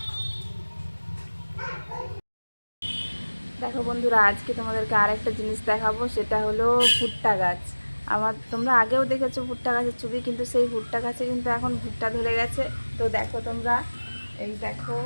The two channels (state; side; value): inverted; both; correlation -1.00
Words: দেখো বন্ধুরা, আজকে তোমাদেরকে আরেকটা জিনিস দেখাবো, সেটা হলো ভুট্টা গাছ। তোমরা আগেও দেখেছো ভুট্টা গাছের ছবি, কিন্তু সেই ভুট্টা গাছে কিন্তু এখন ভুট্টা ধরে গেছে। তো দেখো তোমরা, এই দেখো